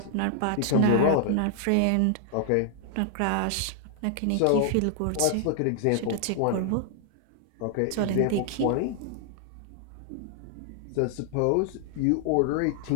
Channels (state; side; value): different; both; correlation 0.00